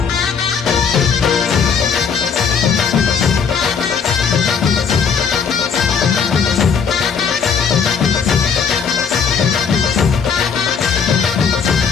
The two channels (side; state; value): right; quieter; 6.3 dB